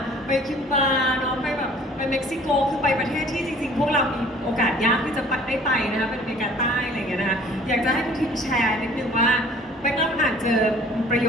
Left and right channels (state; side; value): normal; both; correlation 0.52